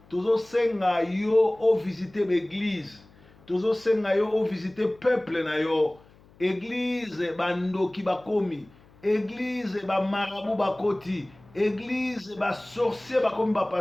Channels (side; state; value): left; noise; hum, 27 dB below the sound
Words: tozosenga yo ovisite baeglise tozosenga yo ovisite peuple na yo eglise bandoki bakomi eglise bamarabu bakoti église basorcier bakomi